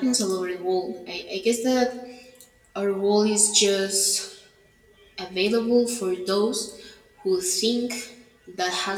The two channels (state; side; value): identical; both; correlation 1.00